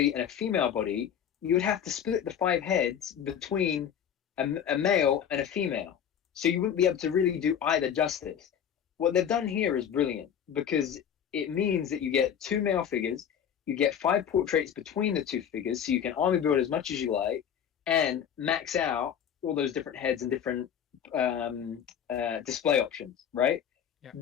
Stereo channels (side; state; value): right; quieter; 8.7 dB